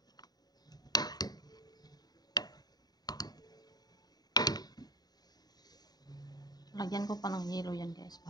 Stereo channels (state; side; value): late; right; 0.19 ms